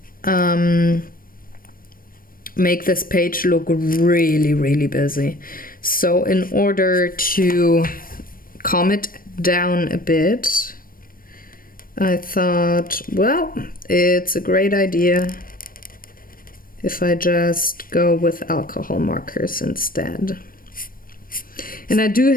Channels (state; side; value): late; right; 0.41 ms